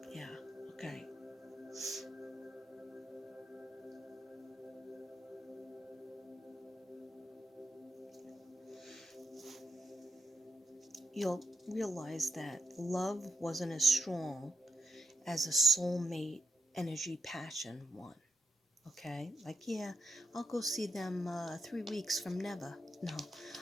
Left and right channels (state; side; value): normal; both; correlation 0.83